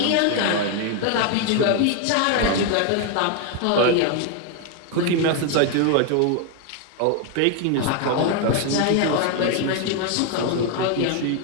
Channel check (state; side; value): different; both; correlation 0.01